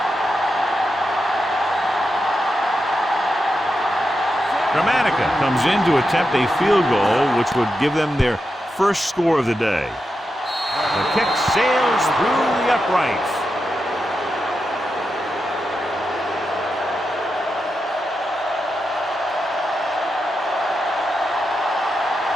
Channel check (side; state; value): both; normal; correlation 0.88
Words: Dramatica comes in to attempt a field goal, which would give them their first score of the day. The kick sails through the uprights.